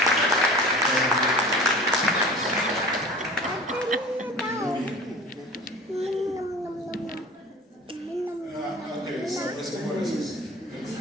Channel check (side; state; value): both; normal; correlation 0.40